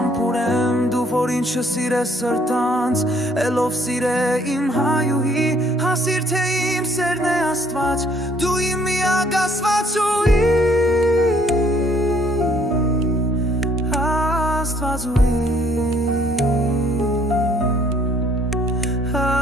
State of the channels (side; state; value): both; normal; correlation 0.63